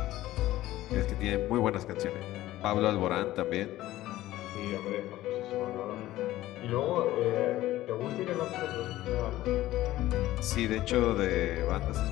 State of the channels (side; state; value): right; quieter; 15.5 dB